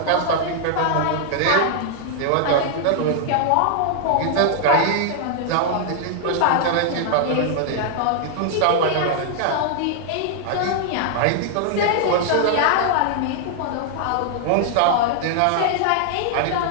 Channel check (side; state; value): both; different; correlation 0.00